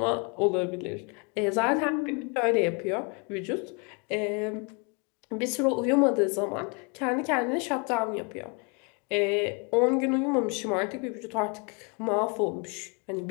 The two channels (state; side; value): quieter; right; 33.4 dB